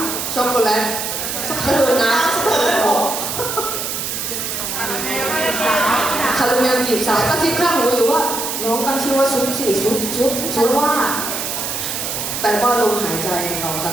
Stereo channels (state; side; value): noise; right; hiss, 3 dB below the sound